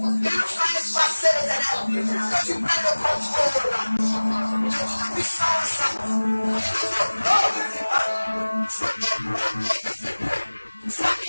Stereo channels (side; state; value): both; inverted; correlation -1.00